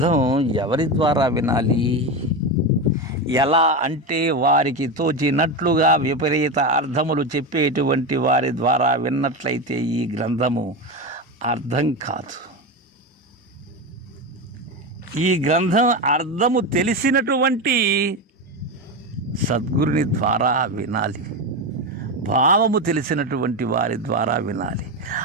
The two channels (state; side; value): normal; both; correlation 0.17